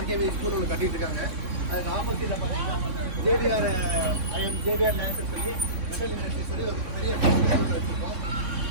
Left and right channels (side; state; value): left; late; 3.6 ms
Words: ஸ்கூல் ஒன்று கட்டிட்டு இருக்காங்க. அதுக்கு ஆப்போசிட்டில் பார்த்தீங்கன்னா ஜேபிஆர் லேசர் சொல்லி மெட்டல் இண்டஸ்ட்ரி சொல்லி ஒரு பெரிய ஸ்கூல் வச்சுருக்கோம்.